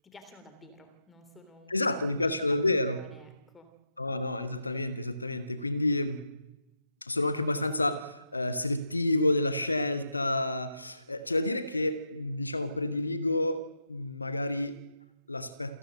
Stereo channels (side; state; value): both; inverted; correlation -0.85